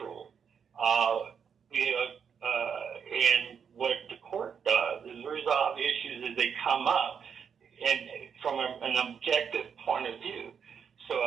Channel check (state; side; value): quieter; left; 7.0 dB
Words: And what the court does is resolve issues as they come up, and from an objective point of view. So